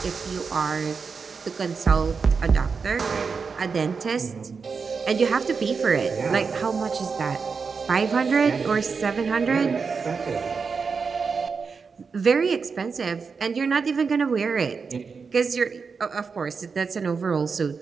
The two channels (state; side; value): quieter; left; 5.3 dB